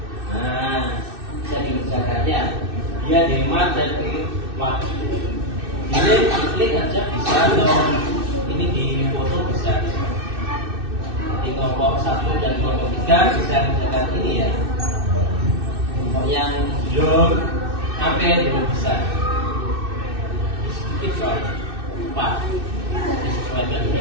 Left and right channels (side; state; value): left; late; 2.6 ms